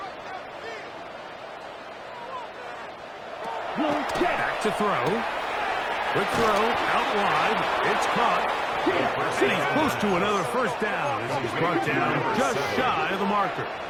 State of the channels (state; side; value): identical; both; correlation 1.00